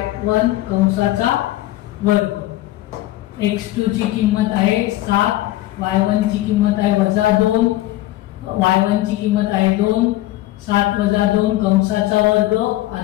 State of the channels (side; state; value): right; quieter; 16.1 dB